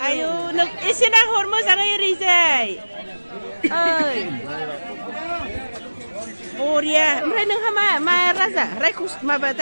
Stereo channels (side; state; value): both; inverted; correlation -1.00